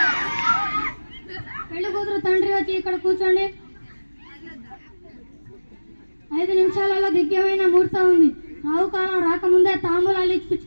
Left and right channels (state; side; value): inverted; both; correlation -1.00